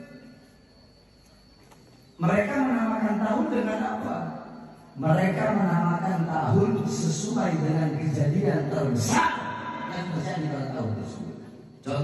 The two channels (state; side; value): identical; both; correlation 1.00